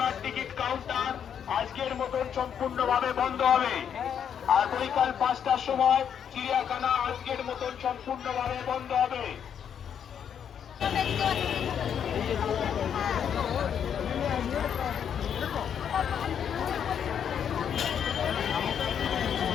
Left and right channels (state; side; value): quieter; right; 8.3 dB